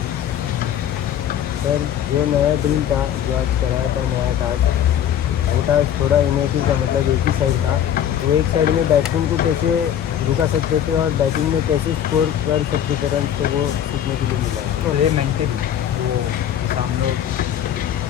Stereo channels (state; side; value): quieter; right; 10.0 dB